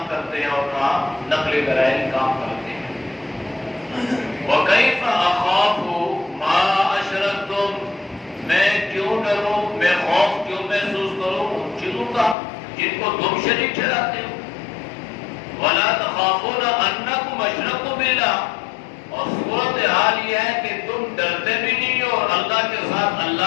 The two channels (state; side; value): drops out; right; at 12.4 s